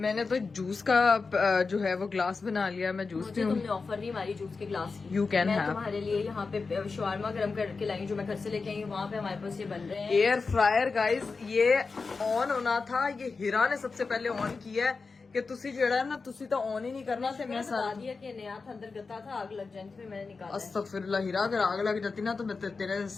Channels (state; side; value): quieter; right; 4.4 dB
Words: तो जूस का जो है वो ग्लास बना लिया, मैं जूस मुझे तुमने ऑफर नहीं मारी जूस के ग्लास की। यू कैन मैं हैव। तुम्हारे लिए यहाँ पे शवारमा गरम करके लाई, जो मैं घर से लेके आई हूँ, वहाँ पे हमारे पास ये बन रहे हैं। एयर फ्रायर गाइस, ये ऑन होना था, ये हीरा ने सबसे पहले ऑन किया है कि तुसी जो है ना तुसी तो ऑन ही नहीं करना थे। मैं बता दिया कि नया था, अंदर गता था, आग लग जानी थी, मैंने निकाला। अस्तगफिरुल्लाह हीरा, अगर आग लग जाती ना तो मैं तेरे